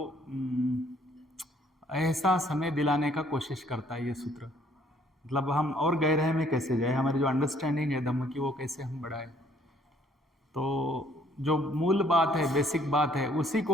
एहसास हमें दिलाने का कोशिश करता है ये सूत्र। मतलब हम और गहराई में कैसे जाए, हमारी जो अंडरस्टैंडिंग है धम्म की वो कैसे हम बढ़ाएं। तो जो मूल बात है, बेसिक बात है, उसी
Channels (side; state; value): both; normal; correlation 0.63